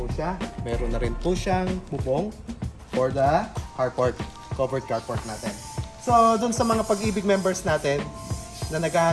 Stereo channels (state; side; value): identical; both; correlation 1.00